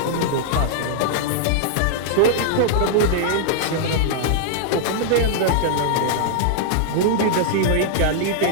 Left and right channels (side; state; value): both; different; correlation -0.01